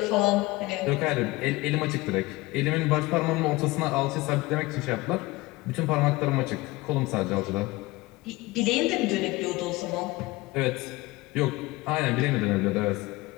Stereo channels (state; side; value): quieter; right; 20.8 dB